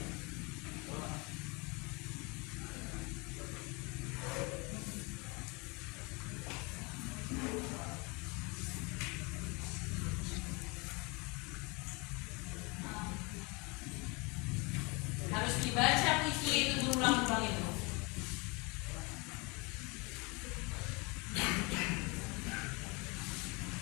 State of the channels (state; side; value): quieter; right; 28.2 dB